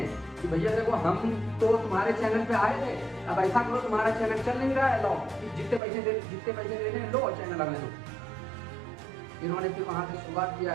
कि भैया देखो हम तो तुम्हारे चैनल पे आए थे, अब ऐसा करो तुम्हारा चैनल चल नहीं रहा है, लो जितने पैसे देने लो चैनल हमें दो। इन्होंने फिर वहाँ से शुरुआत किया,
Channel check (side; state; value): left; drops out; at 5.8 s